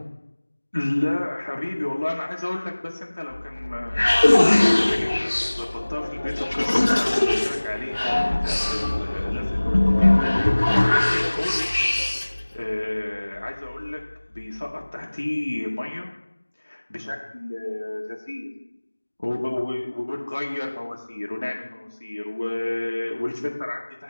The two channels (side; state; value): both; inverted; correlation -1.00